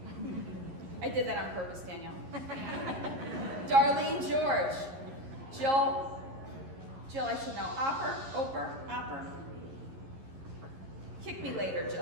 I did that on purpose, Danielle. Darlene George, Jill, I should know, Opper. Kick me later,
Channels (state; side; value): late; left; 11 ms